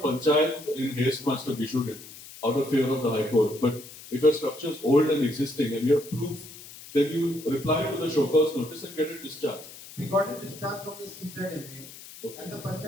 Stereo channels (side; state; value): left; noise; hiss, 16 dB below the sound